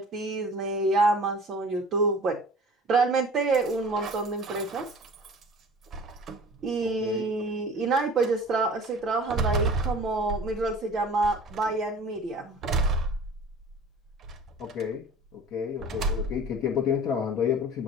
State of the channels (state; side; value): normal; both; correlation 0.43